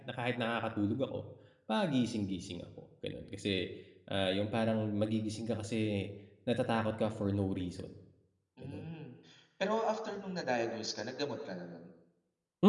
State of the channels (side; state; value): both; identical; correlation 1.00